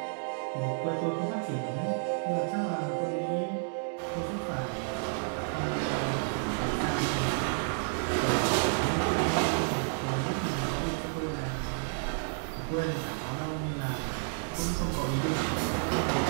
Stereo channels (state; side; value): silent; left; digital silence